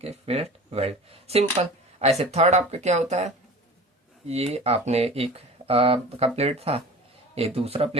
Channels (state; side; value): normal; both; correlation 0.38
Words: फिलेट वेल्ड, सिंपल। ऐसे थर्ड आपका क्या होता है, ये आपने एक का प्लेट था, ये दूसरा